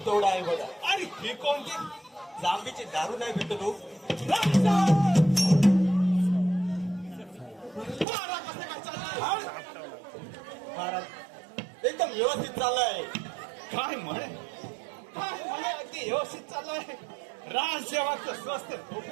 तेवढा आहे बघा. आणि ही कोणती. जांबीची दारू नाही भेटत हो. पारा कसं काय चाललाय. महाराज एकदम व्यवस्थित चाललंय. काय म्हणे अगदी व्यवस्थित चाललंय. राजसेवाचं स्वस्त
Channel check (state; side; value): drops out; left; at 8.1 s